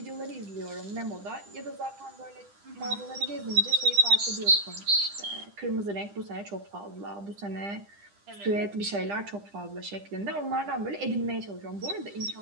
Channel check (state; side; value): late; left; 10 ms